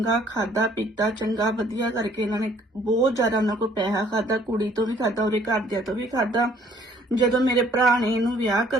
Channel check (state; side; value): normal; both; correlation 0.60